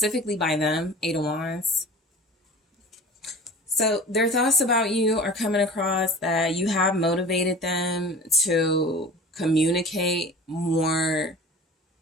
by them, 8 of Wands. So their thoughts about you are coming across that you have motivated them to communicate more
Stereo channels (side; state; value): both; normal; correlation 0.39